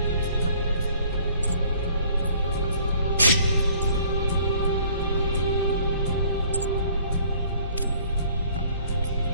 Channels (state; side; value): inverted; both; correlation -0.56